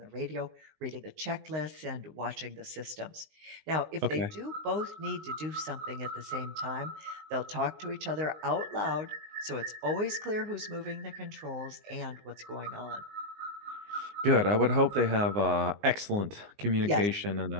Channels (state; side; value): late; left; 19 ms